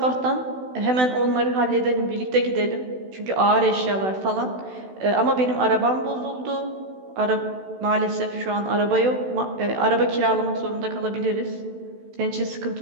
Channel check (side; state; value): left; late; 16 ms